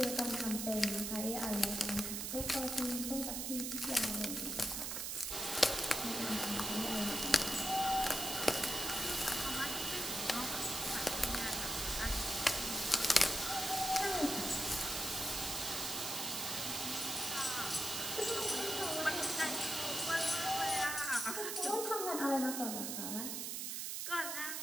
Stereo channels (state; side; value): noise; right; hiss, 3 dB below the sound